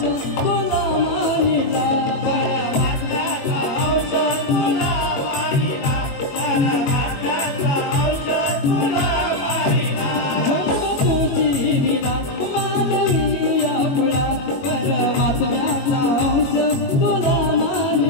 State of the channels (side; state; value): right; late; 21 ms